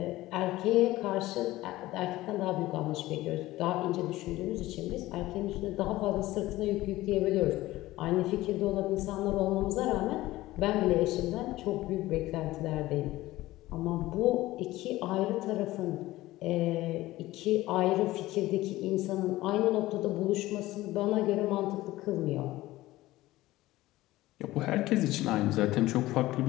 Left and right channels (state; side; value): quieter; right; 17.2 dB